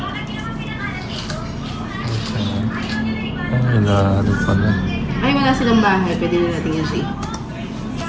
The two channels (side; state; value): both; identical; correlation 1.00